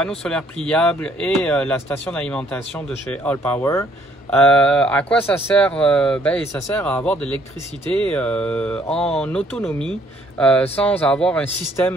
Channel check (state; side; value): normal; both; correlation 0.65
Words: solaires pliables et la station d'alimentation de chez Allpower. À quoi ça sert? Ça sert à avoir de l'électricité en autonomie sans avoir un